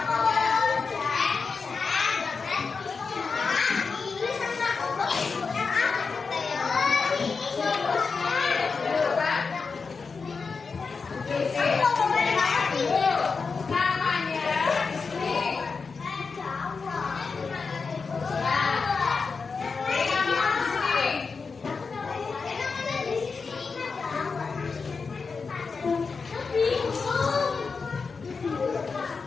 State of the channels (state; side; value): quieter; right; 4.9 dB